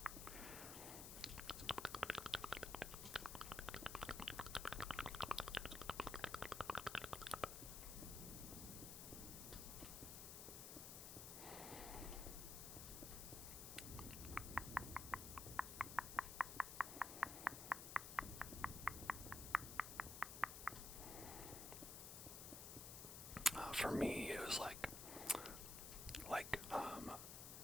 For me, it was like,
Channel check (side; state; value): left; noise; hiss, 7 dB below the sound